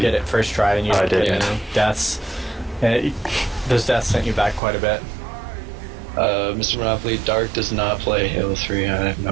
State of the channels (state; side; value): drops out; left; at 4.6 s